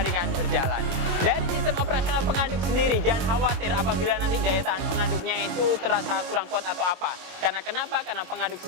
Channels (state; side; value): late; left; 22 ms